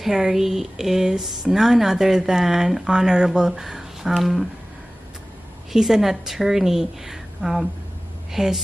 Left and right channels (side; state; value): both; normal; correlation 0.98